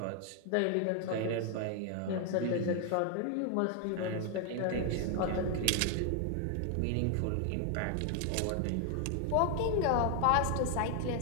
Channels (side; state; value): both; different; correlation 0.00